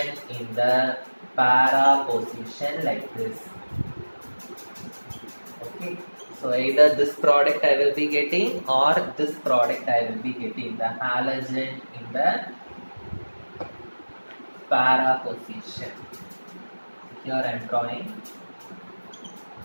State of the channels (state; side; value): inverted; both; correlation -1.00